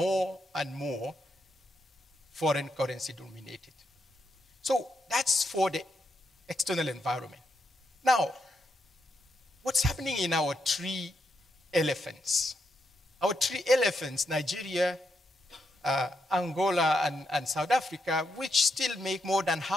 and more foreign currency dominated. So that's for the external environment. Now, what's happening in our three elephants? Our three elephants, Nigeria, Angola, and South Africa, which still make more than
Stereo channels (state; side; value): normal; both; correlation 0.81